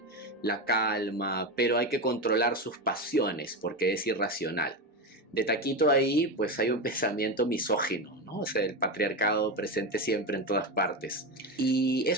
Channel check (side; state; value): both; normal; correlation 0.17